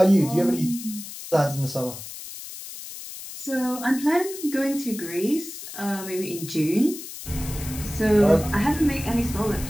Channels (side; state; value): left; noise; hiss, 11 dB below the sound